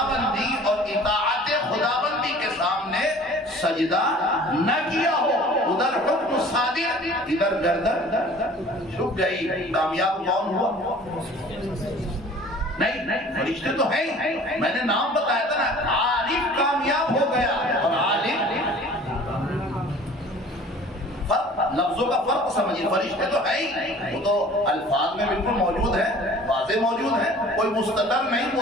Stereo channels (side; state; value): both; normal; correlation 0.47